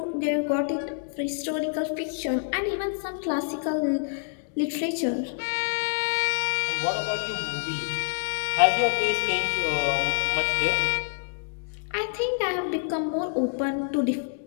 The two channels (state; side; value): silent; right; digital silence